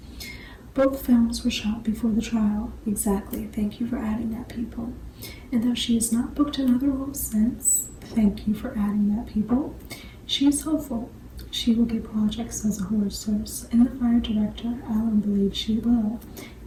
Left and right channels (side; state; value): both; identical; correlation 1.00